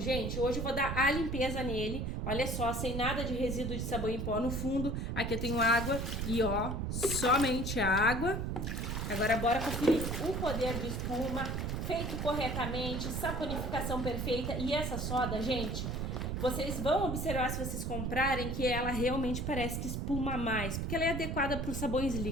Hoje eu vou dar a limpeza nele. Olha só, sem nada de resíduo de sabão em pó no fundo. Aqui eu tenho água e, ó, somente água. Agora bora conferir o poder de espuma, feito corretamente, saponificação perfeita. E essa soda, gente, vocês vão observar se vocês comprarem que ela realmente parece que espuma mais, porque ela é adequada para os sabões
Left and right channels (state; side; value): noise; right; rumble, 2 dB below the sound